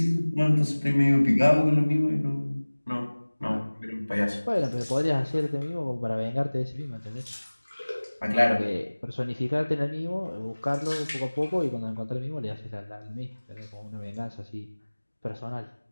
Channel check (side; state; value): both; inverted; correlation -1.00